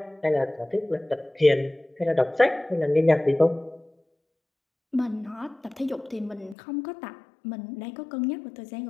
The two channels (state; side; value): drops out; right; at 6.6 s